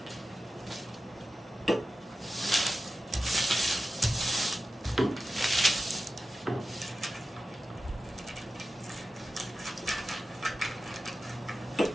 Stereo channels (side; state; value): both; normal; correlation 0.93